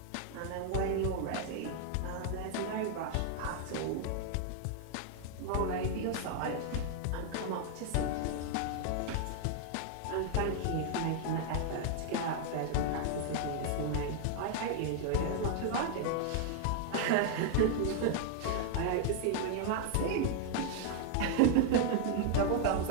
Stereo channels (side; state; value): both; different; correlation 0.00